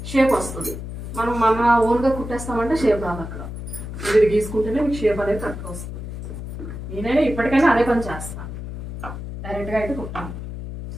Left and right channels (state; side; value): noise; left; hum, 8 dB below the sound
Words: షేప్ వస్తుంది. మనం మన ఓన్గా కుట్టేస్తామంటే షేప్ రాదు. అక్కడ ఇది గీసుకుంటేనే మీకు షేప్ అనేది కరెక్ట్గా వస్తుంది. నేనైనా ఇప్పటికైనా అదే పని చేస్తాను, డైరెక్ట్గా అయితే కుట్టాను.